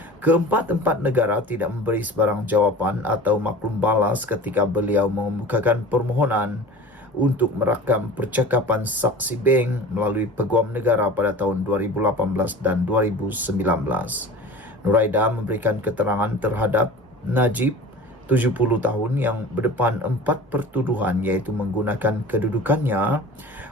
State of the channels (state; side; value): normal; both; correlation 0.38